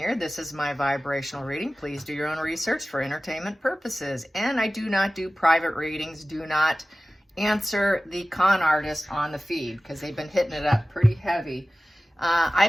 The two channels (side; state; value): both; normal; correlation 0.96